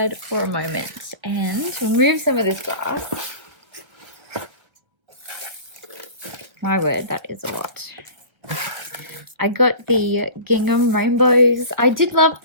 for a moment and remove some of this grass. My word, that is a lot. I got the gingham rainbows. I did love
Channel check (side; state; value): left; late; 1.3 ms